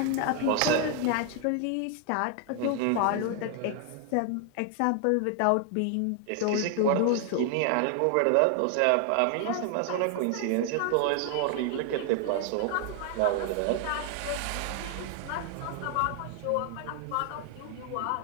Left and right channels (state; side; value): different; both; correlation 0.00